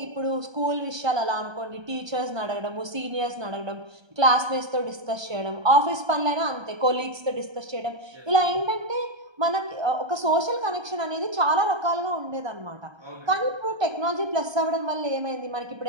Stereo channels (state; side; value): late; left; 1.3 ms